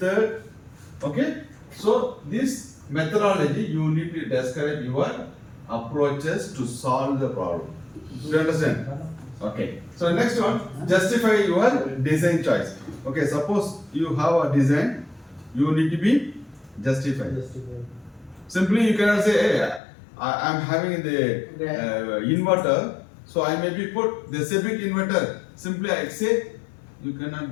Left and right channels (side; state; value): right; drops out; at 19.8 s